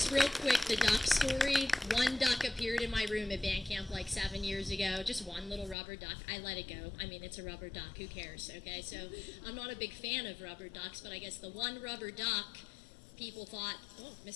real quick, the duck story. One duck appeared in my room at band camp like 7 years ago. Just one little rubber duck. I let it go. I mean, it's a rubber duck. Who cares? Okay, so I'm not a big fan of rubber ducks, but I guess the one rubber duck, people thought, oh,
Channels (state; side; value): drops out; right; at 5.8 s